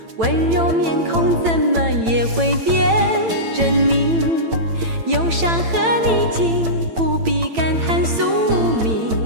温柔面孔怎么也会变狰狞？忧伤和逆境，不必感叹宿命，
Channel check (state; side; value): late; left; 8.9 ms